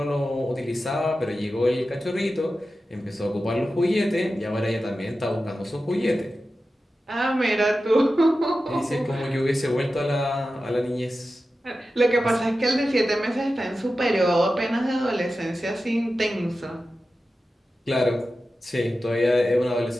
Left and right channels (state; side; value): normal; both; correlation 0.93